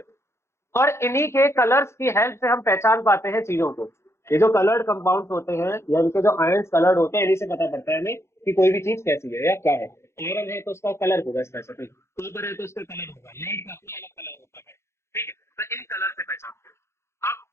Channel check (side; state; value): right; late; 0.13 ms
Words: और इन्हीं के कलर्स की हेल्प से हम पहचान पाते हैं चीजों को। ये जो कलर्ड कंपाउंड्स होते हैं या इनके जो आयंस कलर्ड होते हैं, इन्हीं से पता पड़ता है हमें कि कोई भी चीज कैसी है या क्या है। आयरन है तो उसका कलर होगा स्पेसिफिक, कॉपर है तो उसका कलर होगा, लेड का अपना अलग कलर होता है। ठीक है, तो इन कलर से पहचानते हैं। अब